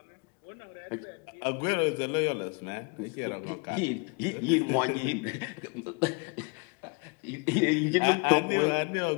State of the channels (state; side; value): quieter; right; 32.3 dB